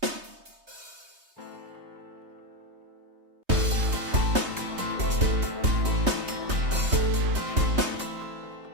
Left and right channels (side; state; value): left; late; 3.2 ms